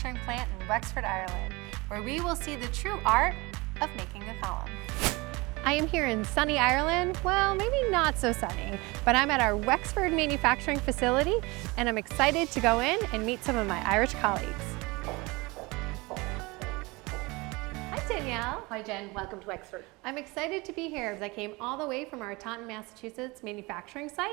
plant in Wexford, Ireland, where we will see the true art of making a column. I am here in sunny Ireland. Well, maybe not so sunny, but I'm at our Wexford manufacturing facility and I'm excited to go in and meet some of my Irish colleagues. Hi Danielle. Hi Jen, welcome to Wexford. I'm excited to be here because I came all the way from our Taunton, Massachusetts manufacturing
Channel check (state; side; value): quieter; left; 24.2 dB